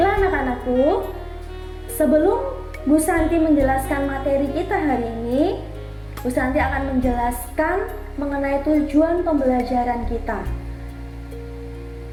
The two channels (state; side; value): identical; both; correlation 1.00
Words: anak-anakku, sebelum Bu Santi menjelaskan materi kita hari ini, Bu Santi akan menjelaskan mengenai tujuan pembelajaran kita.